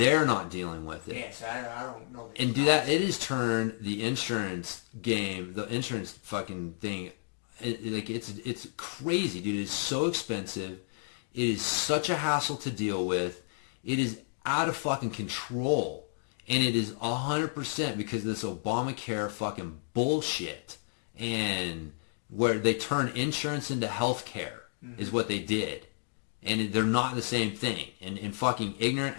not dealing with it. Yes, I don't know. And do that. It has turned the insurance game, the insurance fucking thing, it's crazy, dude. It's so expensive. It is such a hassle to deal with. It is out of fucking control. And it is 100% because of this Obamacare fucking bullshit. And where they turn insurance into health care is what they did. And they're not the same thing. And fucking ignorant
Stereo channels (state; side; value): silent; right; digital silence